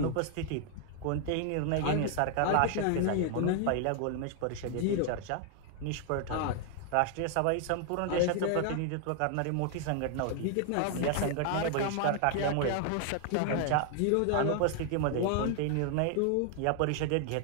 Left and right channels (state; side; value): different; both; correlation 0.00